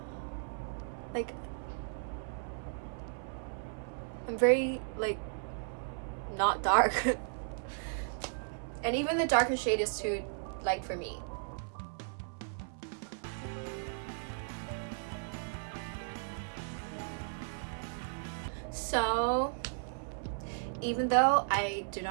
Like, I'm very, like, not dark. And even the darker shade is too light for me. So, even though I do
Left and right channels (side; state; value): left; silent; 54 dB below the other